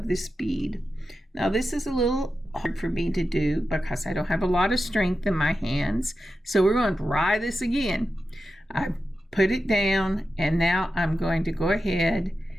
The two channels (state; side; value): normal; both; correlation 0.91